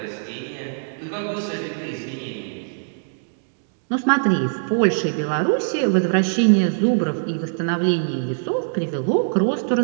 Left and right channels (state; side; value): silent; left; digital silence